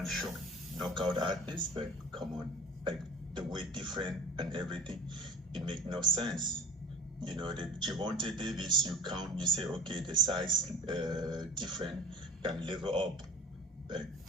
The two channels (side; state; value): both; normal; correlation 0.40